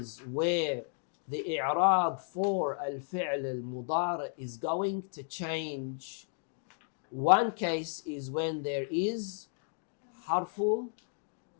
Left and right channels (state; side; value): silent; right; 55 dB below the other